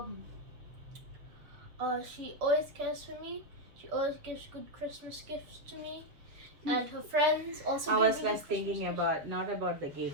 she always cares for me. She always gives good Christmas gifts to me, and her friends also I give was me less good Christmas thinking gifts. about not about the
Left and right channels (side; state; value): left; late; 7.0 ms